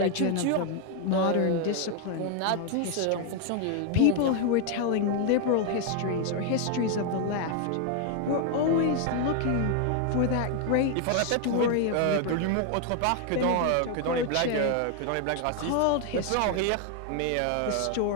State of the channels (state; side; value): different; both; correlation 0.00